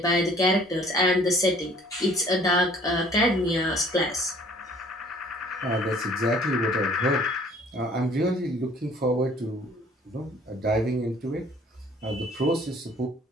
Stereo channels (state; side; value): normal; both; correlation 0.55